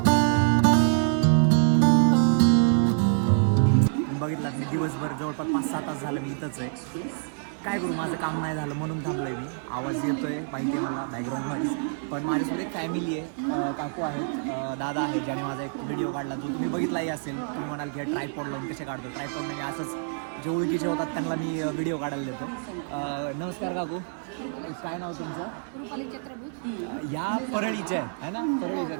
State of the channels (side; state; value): left; silent; 60 dB below the other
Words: बघितलात मी दिवसभर जवळपास 5-6 तास झालं मी इथंच आहे. काय करू, माझं काम नाही झालं म्हणून थांबलो आहे मी. आवाज येतोय माहिती आहे मला बॅकग्राऊंडमध्ये, पण माझ्यासोबत एक फॅमिली आहे, काकू आहेत, दादा आहे, ज्याने माझा एक व्हिडिओ काढला जो तुम्ही बघितलाही असेल. तुम्ही म्हणाल की ट्रायपॉड लावून कसे काढतो, ट्रायपॉड नाही, असंच जे ओळखीचे होतात त्यांना मी व्हिडिओ काढायला देतो. नमस्कार काकू, काय नाव तुमचं? रुपाली चक्रभूत. या परळीचे आहे ना, परळीच्या